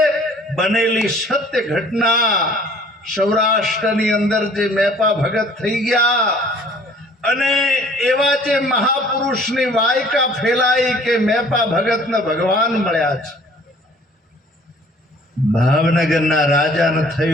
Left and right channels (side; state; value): both; normal; correlation 0.54